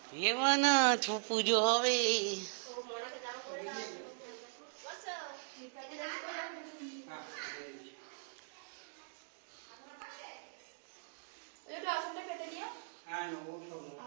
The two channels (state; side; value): silent; left; digital silence